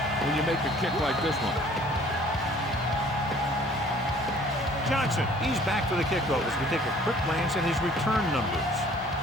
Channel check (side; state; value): both; normal; correlation 0.54